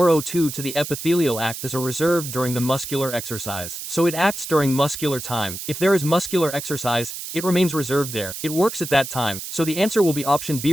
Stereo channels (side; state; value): right; noise; hiss, 8 dB below the sound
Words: O2 to the epithelial act as a reserve during the muscular exercise. So it acts during muscular time. If there is muscular exercise, it remains reserved there. It works at that time. So the answer will be option